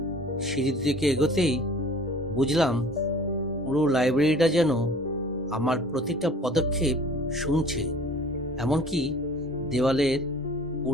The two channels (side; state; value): both; normal; correlation 0.48